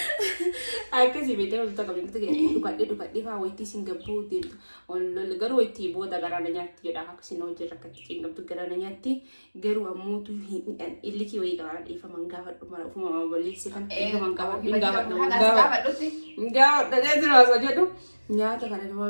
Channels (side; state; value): both; inverted; correlation -1.00